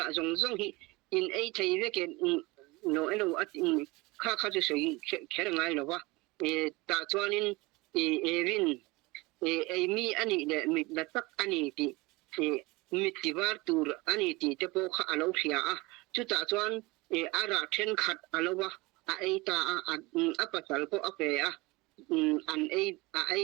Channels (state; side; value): quieter; left; 23.2 dB